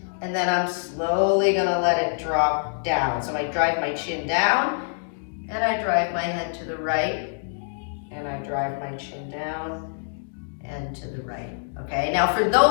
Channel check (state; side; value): silent; right; digital silence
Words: and then I'm slowly going to let it drop down. So I drive my chin down, and I drive my head to the right, and I drive my chin down and to the right. Okay, now for